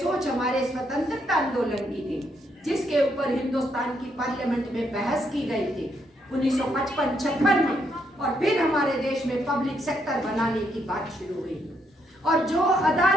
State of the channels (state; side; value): normal; both; correlation 0.75